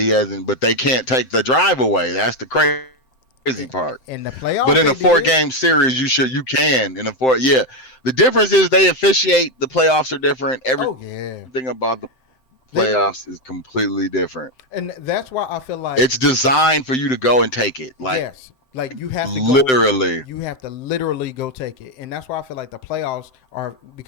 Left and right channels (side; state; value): right; late; 7.7 ms